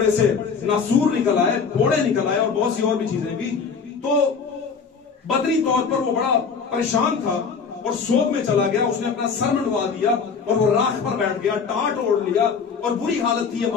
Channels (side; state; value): right; quieter; 5.6 dB